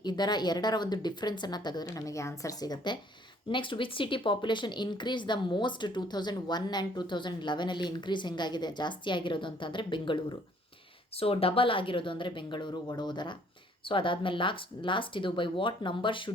ಎರಡರ ಒಂದು ಡಿಫ್ರೆನ್ಸನ್ನು ತೆಗೆದ್ರೆ ನಮಗೆ ಆನ್ಸರ್ ಸಿಗುತ್ತೆ. Next which city population increase the most 2001 and 2011 increase ಹೆಂಗಾಗಿದೆ, ಜಾಸ್ತಿ ಆಗಿರೋದು ಅಂತಂದರೆ ಬೆಂಗಳೂರು. ಸೊ ಡಬಲ್ ಆಗಿರೋದು ಅಂದರೆ ಬೆಂಗಳೂರು, ವಡೋದರ. ಸೊ ಅದಾದಮೇಲೆ ಲಾಸ್ಟ್ ಇದು by what number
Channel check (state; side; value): normal; both; correlation 0.61